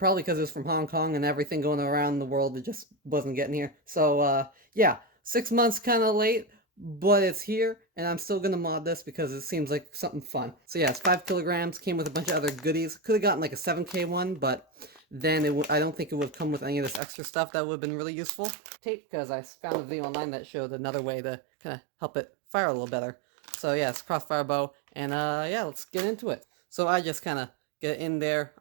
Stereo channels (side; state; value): left; drops out; at 17.0 s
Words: because it was from Hong Kong and everything going around the world. It just wasn't getting here. So yeah, 6 months kind of late, but it's here, and I'm still gonna mod this because it seems like something fun. So yeah, it's 5 kilograms. Came with a bunch of other goodies. Could have gotten like a 7K one, but then I don't think it would have come with any of this extra stuff that would have been really useful. Tape, because I found a video online that showed another way to kind of help it fire a little better. So yeah, it's Crossfire bow, and yeah, let's get into it. So I just kind of get in there,